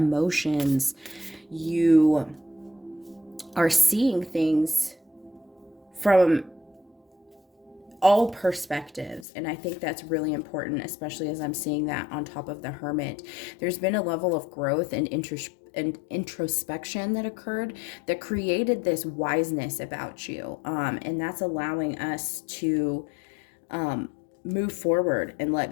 You are seeing things from all perspectives, and I think that's really important, especially as I'm seeing that on top of the Hermit. There's been a level of growth and introspection that occurred that created this wiseness about you, and that's allowing us to move forward and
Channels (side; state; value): right; drops out; at 9.2 s